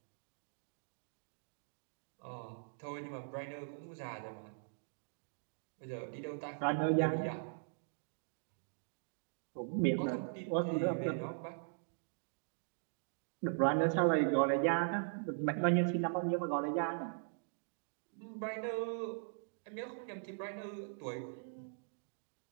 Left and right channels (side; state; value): left; silent; digital silence